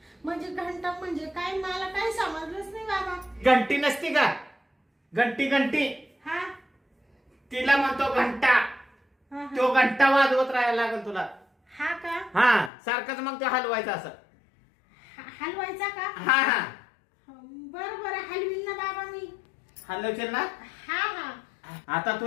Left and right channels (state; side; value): drops out; right; at 12.7 s